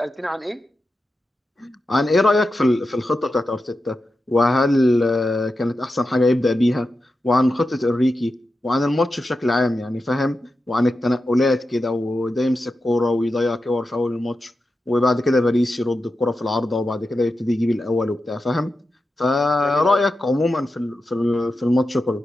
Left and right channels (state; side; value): normal; both; correlation 0.90